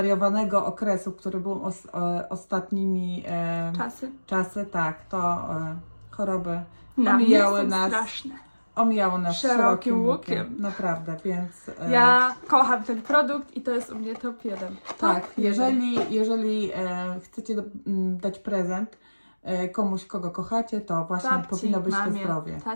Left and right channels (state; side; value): inverted; both; correlation -1.00